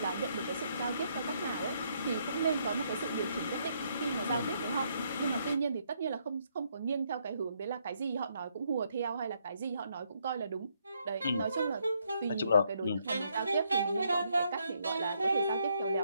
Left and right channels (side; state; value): both; inverted; correlation -0.73